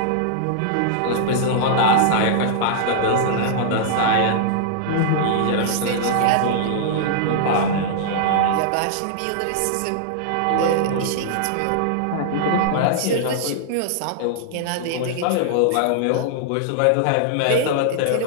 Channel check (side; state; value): both; different; correlation -0.01